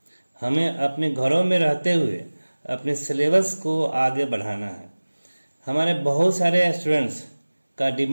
हमें अपने घरों में रहते हुए अपने सिलेबस को आगे बढ़ाना है। हमारे बहुत सारे स्टूडेंट्स का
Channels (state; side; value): inverted; both; correlation -1.00